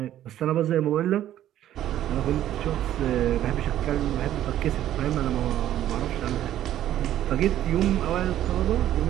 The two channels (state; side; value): quieter; left; 12.2 dB